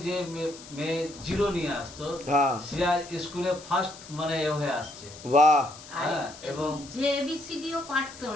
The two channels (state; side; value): noise; left; hiss, 17 dB below the sound